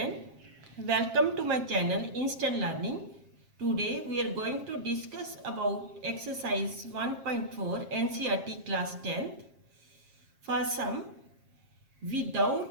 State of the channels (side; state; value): left; late; 7.4 ms